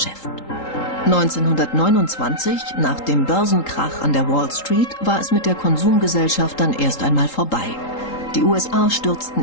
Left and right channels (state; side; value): late; right; 3.8 ms